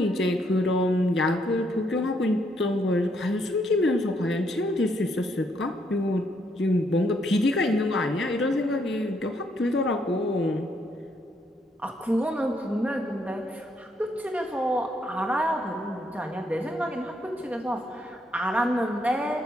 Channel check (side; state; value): both; normal; correlation 0.73